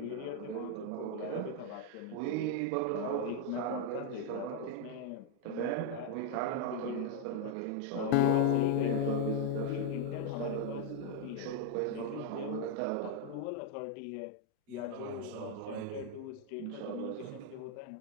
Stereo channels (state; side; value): different; both; correlation 0.00